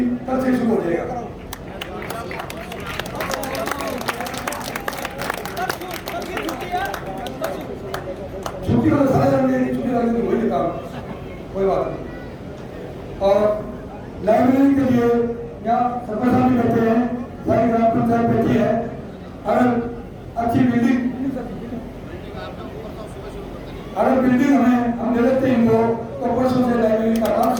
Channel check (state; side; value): identical; both; correlation 1.00